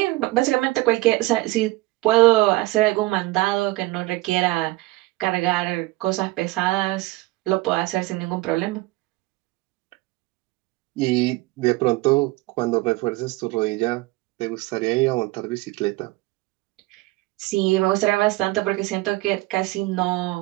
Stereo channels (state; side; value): quieter; left; 20.5 dB